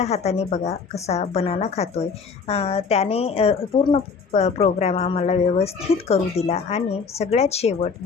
हाताने बघा कसा बनाना खातोय. त्याने पूर्ण प्रोग्राम आम्हाला व्यवस्थित करू दिला आणि सगळ्यात शेवट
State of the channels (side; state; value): right; quieter; 5.3 dB